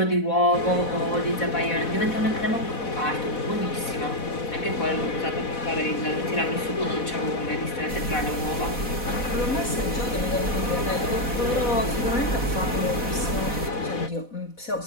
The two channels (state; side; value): late; right; 4.1 ms